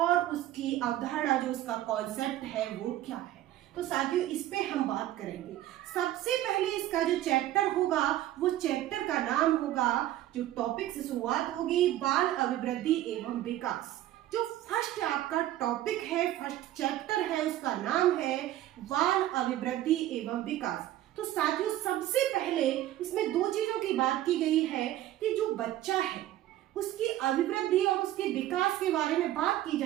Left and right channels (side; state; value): left; quieter; 13.8 dB